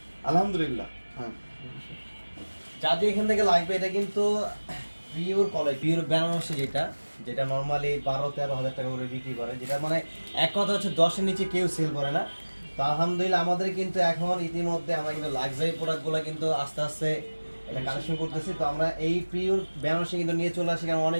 আলহামদুলিল্লাহ। হ্যাঁ, যাদের এখান থেকে লাগবে, এটা কিন্তু পিওর কলাই, পিওর বেনারসি, যেটা নর্মালি 12-13 হাজার টাকা করে বিক্রি করে, যেটা মানে এক কথা হচ্ছে 10-এর নিচে কেউ সেল করে না। তো আলহামদুলিল্লাহ আমাদের কিন্তু এখন ইতিমধ্যে আমরা কিন্তু লাক্সারি প্রোডাক্টগুলো কিন্তু আস্তে আস্তে এটা কালেকশন করতেছি। তো আমরা এই পিওর বেনারসি কিন্তু নিয়ে চলে আসি, কারণ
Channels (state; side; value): inverted; both; correlation -1.00